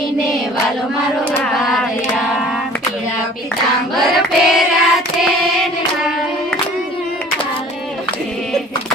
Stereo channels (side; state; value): both; normal; correlation 0.49